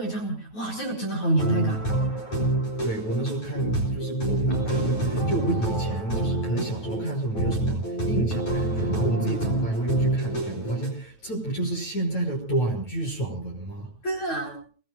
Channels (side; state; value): right; late; 9.2 ms